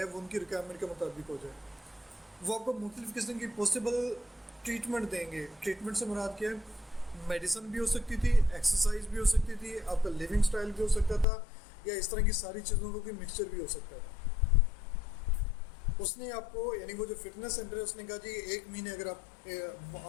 वो उनकी रिक्वायरमेंट के मुताबिक हो जाए। वो आपको मुख्तलिफ किस्म की पॉसिबल ट्रीटमेंट देंगे। ट्रीटमेंट से मुराद क्या है, मेडिसिन भी हो सकती थी, एक्सरसाइज भी हो सकती थी, आपका लिविंग स्टाइल भी हो सकता था, या इस तरह की सारी चीज़ों का कोई मिक्सचर भी हो सकता था। उसने आपको, यानी वो जो फिटनेस सेंटर है, उसने कहा जी 1 महीने, अगर आप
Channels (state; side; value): drops out; right; at 11.2 s